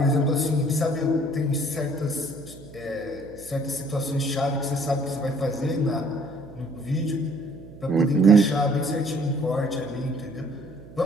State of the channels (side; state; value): right; noise; hum, 18 dB below the sound